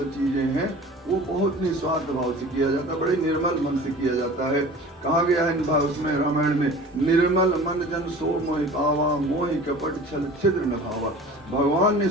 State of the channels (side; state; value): both; normal; correlation 0.41